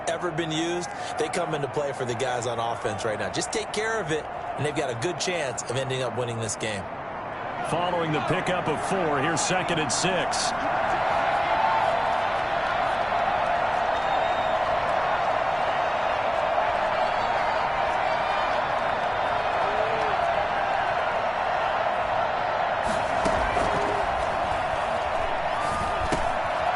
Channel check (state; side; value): identical; both; correlation 1.00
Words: ever been used, they come into play for the guys on offense right now. Just take care of it, and they've got a good chance of ending up winning this game. Following the pickup of 4, here's 2nd and 6.